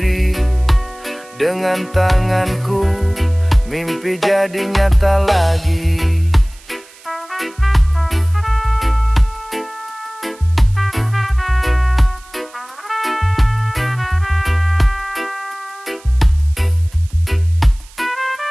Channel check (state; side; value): noise; right; hiss, 24 dB below the sound